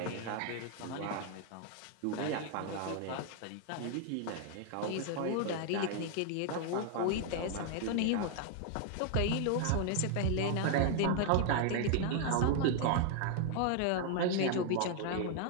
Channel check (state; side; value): different; both; correlation 0.00